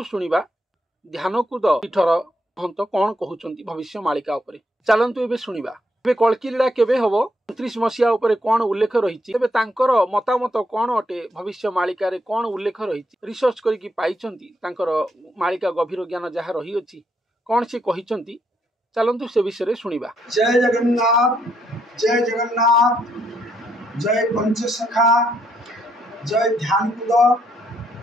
शुणिबा ध्यानकूद पीठर महंत कौन कहउचंती भविष्य मालिका उपरे। चलंतु एबे शुणिबा। एबे कल्कीलीला केबे हबो 29 मसिया उपरे कौन उल्लेख रहिछि। तेबे तांकर मतामत कौन अटे भविष्य मालिका रे कौन उल्लेख रहिछि रिसर्च करिकि पाइचंती। तांकर मालिका गभीर ज्ञान जहा रही अछि कौन से कहिचंती चलंतु से विषय शुणिबा। जय जगन्नाथ, जय जगन्नाथ, जय पंचसखा, जय ध्यानकूद,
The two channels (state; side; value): normal; both; correlation 0.75